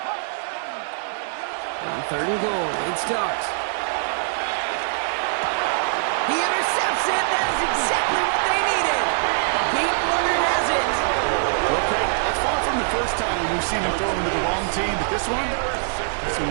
On third and goal, it starts. He intercepts it. That is exactly what they needed. Pete Warner has it. Okay, that's far from the first time we've seen him throw into the wrong team, but this one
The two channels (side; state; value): left; silent; digital silence